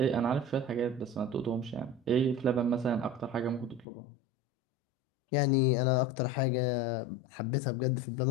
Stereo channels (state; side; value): drops out; right; at 3.9 s